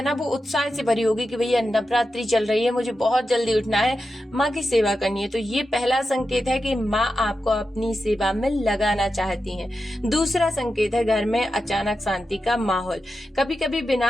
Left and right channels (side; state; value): both; normal; correlation 0.90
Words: ना वो उत्साह से भरी होगी कि भैया नवरात्रि चल रही है, मुझे बहुत जल्दी उठना है, माँ की सेवा करनी है। तो ये पहला संकेत है कि माँ आपको अपनी सेवा में लगाना चाहती हैं। दूसरा संकेत है घर में अचानक शांति का माहौल। कभी कभी